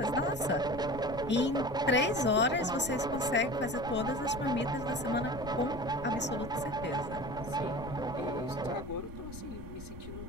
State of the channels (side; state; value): left; noise; rumble, 13 dB below the sound